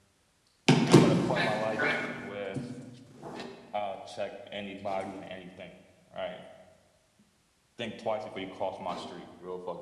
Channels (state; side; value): identical; both; correlation 1.00